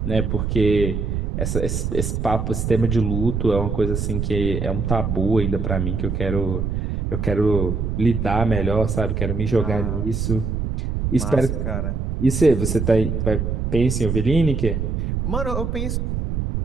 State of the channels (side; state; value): right; noise; rumble, 1 dB below the sound